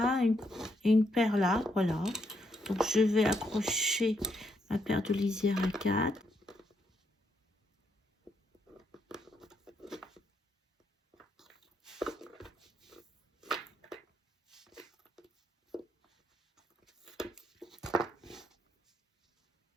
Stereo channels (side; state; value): both; normal; correlation 0.77